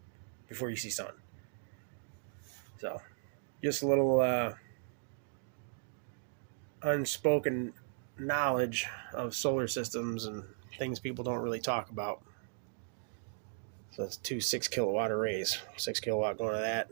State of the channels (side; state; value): left; silent; digital silence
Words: before you see sun. So just a little unspoken knowledge of solar systems and things people don't really talk about. So it's 2 6 kilowatt arrays, 6 kilowatt going to that,